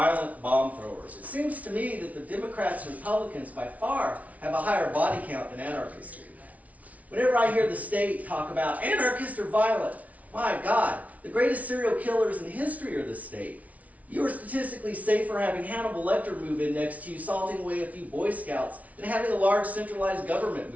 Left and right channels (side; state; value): left; late; 0.069 ms